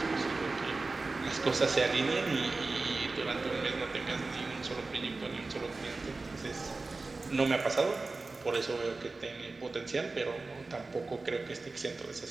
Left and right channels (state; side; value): quieter; left; 3.6 dB